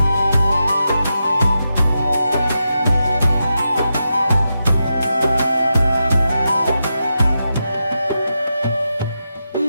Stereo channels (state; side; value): inverted; both; correlation -0.88